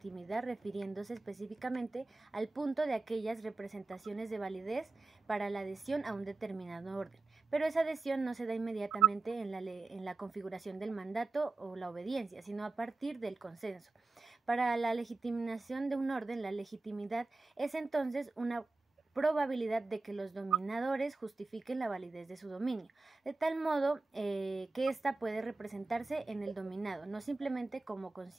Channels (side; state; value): left; quieter; 3.4 dB